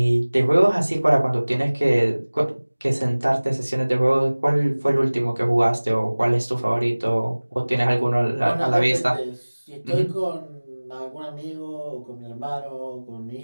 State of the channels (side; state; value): both; inverted; correlation -1.00